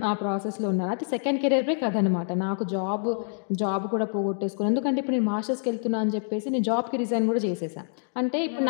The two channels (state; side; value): silent; right; digital silence